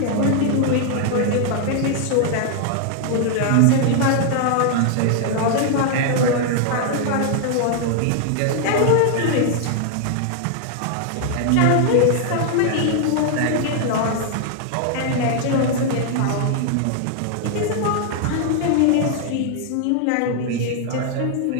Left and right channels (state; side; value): different; both; correlation 0.00